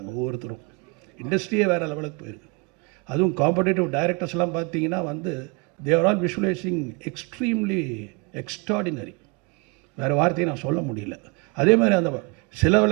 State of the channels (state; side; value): quieter; left; 30.5 dB